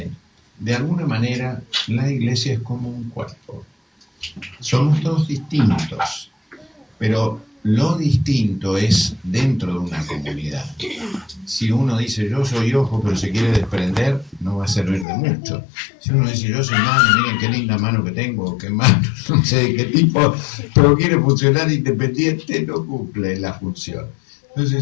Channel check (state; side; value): drops out; right; at 15.1 s